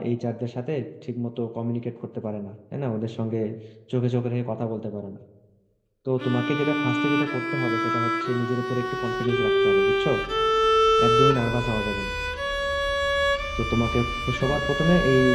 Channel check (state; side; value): identical; both; correlation 1.00